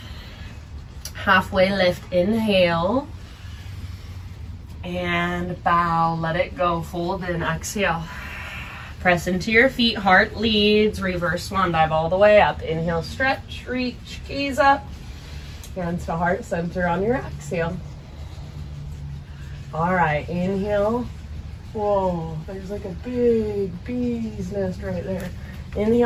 Halfway lift, inhale. And bow, let it go, fold in, exhale. Press into your feet, heart leads, reverse swan dive all the way up. Inhale, stretch, reach, gaze up. Hands to heart center on your exhale. All right, inhale. Whoa, there's like a big bee's nest right there.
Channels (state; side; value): identical; both; correlation 1.00